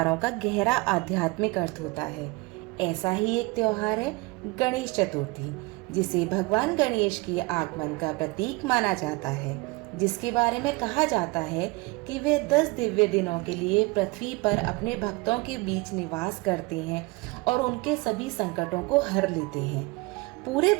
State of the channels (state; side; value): quieter; left; 24.8 dB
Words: का गहरा आध्यात्मिक अर्थ होता है। ऐसा ही एक त्योहार है गणेश चतुर्थी, जिसे भगवान गणेश के आगमन का प्रतीक माना जाता है, जिसके बारे में कहा जाता है कि वे 10 दिव्य दिनों के लिए पृथ्वी पर अपने भक्तों के बीच निवास करते हैं और उनके सभी संकटों को हर लेते हैं। पूरे